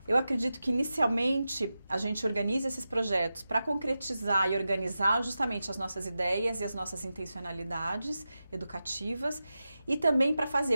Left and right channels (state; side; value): inverted; both; correlation -0.92